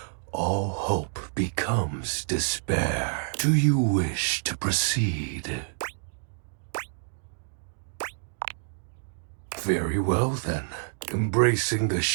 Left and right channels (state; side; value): silent; left; digital silence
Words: all hope becomes despair. Do you wish to proceed? Very well then. Embracing the